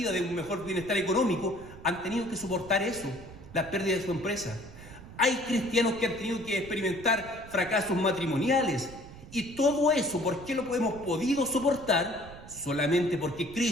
de un mejor bienestar económico. Han tenido que soportar eso, la pérdida de su empresa. Hay cristianos que han tenido que experimentar fracasos matrimoniales. Y todo eso, ¿por qué lo hemos podido soportar? Solamente porque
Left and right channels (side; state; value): right; noise; rumble, 17 dB below the sound